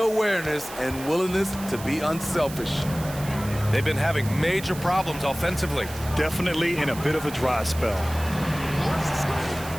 awareness and willingness to be unselfish. They've been having major problems offensively. Definitely in a bit of a dry spell.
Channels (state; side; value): noise; right; hiss, 14 dB below the sound